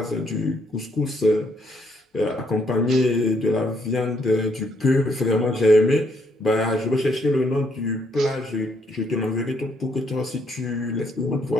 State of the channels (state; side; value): normal; both; correlation 0.71